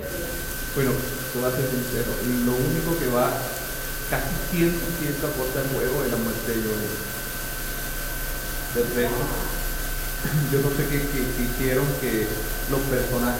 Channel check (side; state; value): both; identical; correlation 1.00